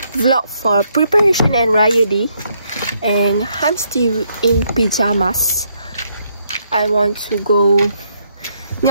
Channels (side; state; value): both; inverted; correlation -0.74